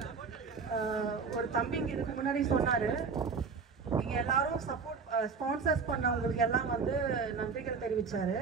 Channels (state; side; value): quieter; left; 5.3 dB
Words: ஒரு தம்பிங்க இதுக்கு முன்னாடி சொன்னாரு, நீங்க எல்லாரும் சப்போர்ட் ஸ்பான்சர்ஸ் பண்ணவங்களுக்கு எல்லாம் வந்து நன்றிகள் தெரிவிச்சாரு.